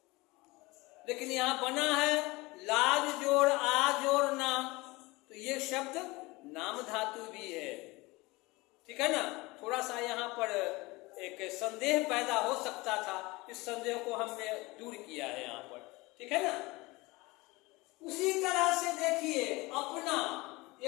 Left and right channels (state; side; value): quieter; right; 22.7 dB